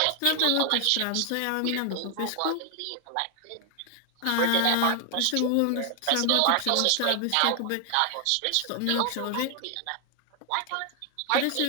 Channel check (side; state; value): both; different; correlation 0.00